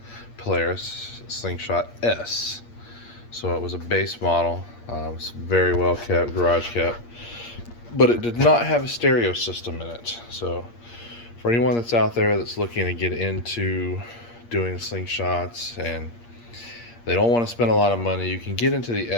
Polaris Slingshot S. So it was a base model. It was very well kept, garage kept, but it did not have a stereo system in it. So for anyone that's out there that's looking to get into doing slingshots and they don't want to spend a lot of money, you can get into the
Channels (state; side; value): late; right; 8.5 ms